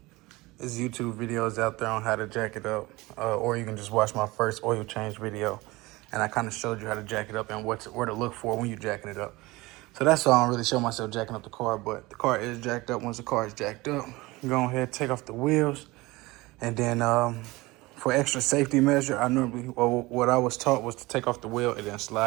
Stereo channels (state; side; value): quieter; left; 21.4 dB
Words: there's YouTube videos out there on how to jack it up. Or you can just watch my first oil change video. And I kind of showed you how to jack it up and where to look for when you're jacking it up. So that's why I don't really show myself jacking up the car, but the car is jacked up. Once the car is jacked up, go ahead, take off the wheels, and then for extra safety measure, what I was taught was to take off the wheel and then